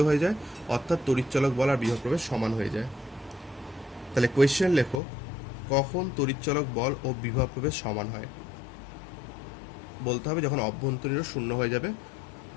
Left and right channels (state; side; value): drops out; right; at 5.0 s